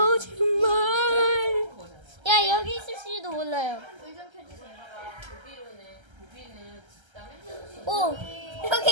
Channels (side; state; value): left; late; 1.3 ms